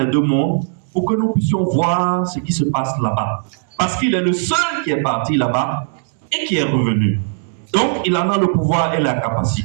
deux mondes pour que nous puissions voir ce qui se passe là-bas. Parce qu'il est le seul qui est parti là-bas et qui est revenu. Donc, il en a le pouvoir et la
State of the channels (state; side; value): silent; left; 67 dB below the other